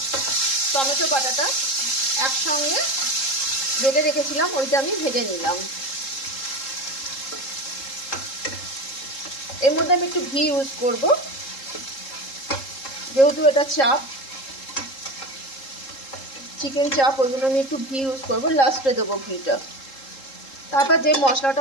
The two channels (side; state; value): right; late; 3.7 ms